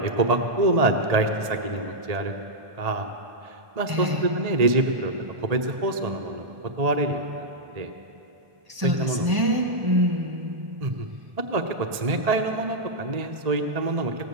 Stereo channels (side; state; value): left; late; 1.8 ms